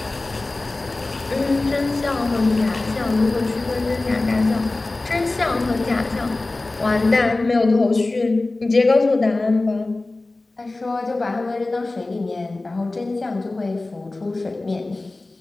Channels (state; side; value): quieter; right; 3.1 dB